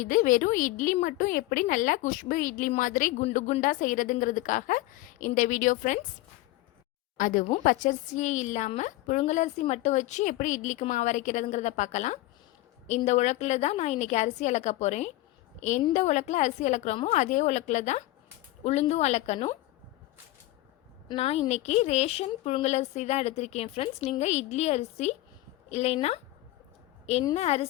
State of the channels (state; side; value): quieter; right; 17.7 dB